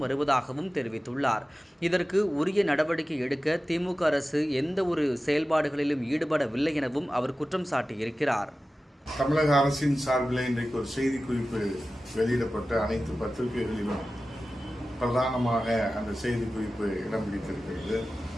வருவதாகவும் தெரிவித்துள்ளார். இதற்கு உரிய நடவடிக்கை எடுக்க திமுக அரசு எந்த ஒரு செயல்பாடுகளிலும் ஈடுபடவில்லை எனவும் அவர் குற்றம் சாட்டியிருக்கிறார். தமிழக அரசின் சார்பில் இன்றைக்கு ஒரு செய்திக்குறிப்பு வெளியிடப்பட்ட அனைத்து பத்திரிகைகளிலும் பிரதானமாக அந்த செய்திக்குறிப்பு இடம் பிடித்திருக்கிறது.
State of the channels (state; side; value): normal; both; correlation 0.95